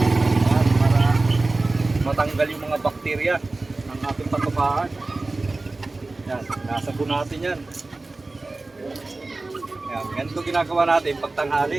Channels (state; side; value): quieter; left; 3.3 dB